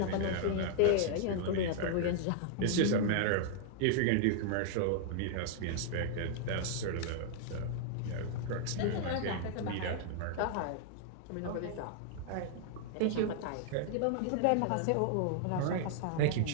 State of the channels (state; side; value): different; both; correlation 0.00